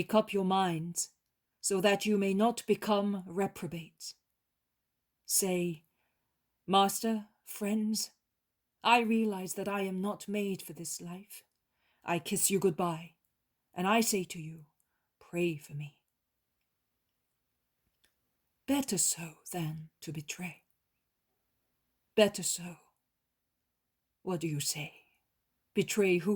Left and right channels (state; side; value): identical; both; correlation 1.00